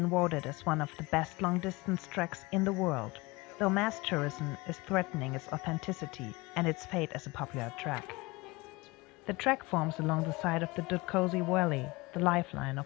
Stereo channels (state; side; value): quieter; right; 23.2 dB